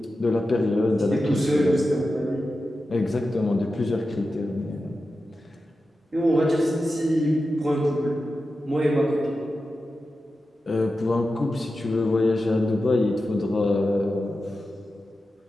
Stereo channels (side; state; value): both; normal; correlation 0.92